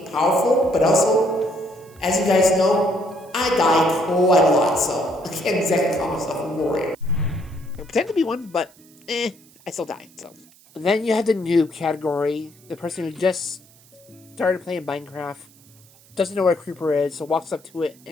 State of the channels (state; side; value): noise; right; hiss, 27 dB below the sound